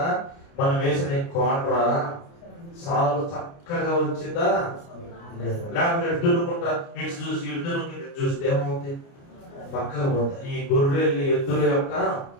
మనం వేసిన కోండ్రా సాలు చక్కగా వచ్చిందా లేదా? లేకపోతే ఎడ్డునుకుంటా ఇటు చూసి ఇడ్డునుకుంటే ఇటు చూస్తే ఏమవుతుంది? పక్కగా పోతాయి. ఈ గొర్రెలు ఎద్దుల యొక్క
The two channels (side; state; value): right; late; 29 ms